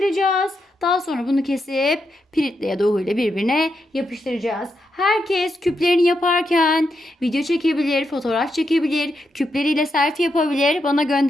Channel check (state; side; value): normal; both; correlation 0.83